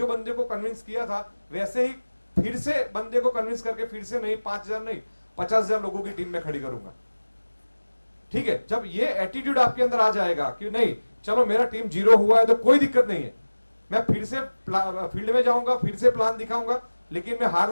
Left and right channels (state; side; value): inverted; both; correlation -1.00